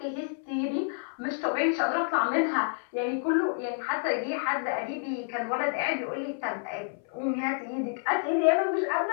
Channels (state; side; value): silent; right; 59 dB below the other